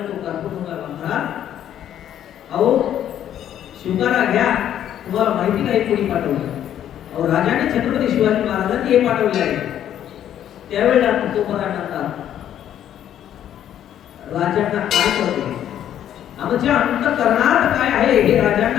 तो कारकुन म्हणाला महाराज अहो शिवकारा घ्या तुम्हाला माहिती नाही कोणी पाठवलं अहो राजाने छत्रपती शिवाजी महाराजांनी हे पाठवले आहे त्यावेळेला तुकोबाराय म्हणतात राजांना काय कळते आमच्या अंतःकरणात काय आहे हे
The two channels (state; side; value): quieter; right; 10.7 dB